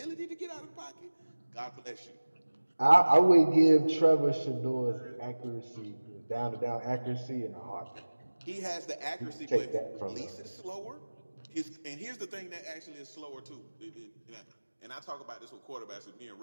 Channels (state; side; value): inverted; both; correlation -1.00